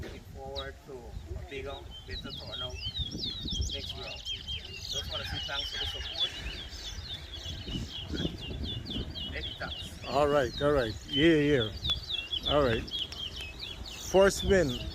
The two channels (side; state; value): both; identical; correlation 1.00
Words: looking forward to a bigger, better turnout next year. Just want to say thanks for the support. Many thanks. All right. Yeah. All right. First win.